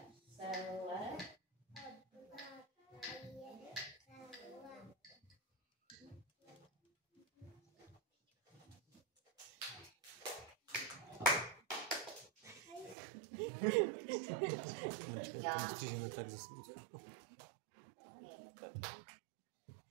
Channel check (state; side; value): drops out; left; at 13.0 s